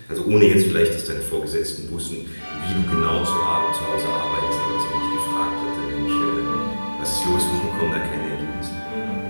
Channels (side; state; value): both; inverted; correlation -1.00